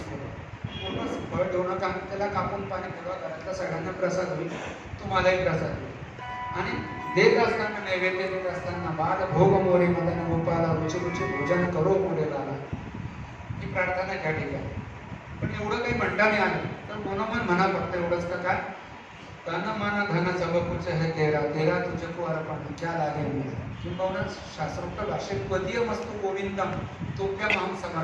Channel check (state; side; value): identical; both; correlation 1.00